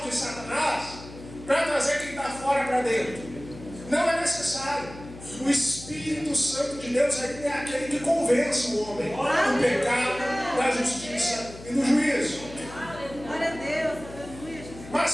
de Satanás, para trazer quem está fora para dentro. Não é necessário. O Espírito Santo de Deus é aquele que convence o homem do pecado, da justiça e do juízo. Glória a Deus, aleluia, Jesus.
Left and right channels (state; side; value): noise; left; hum, 15 dB below the sound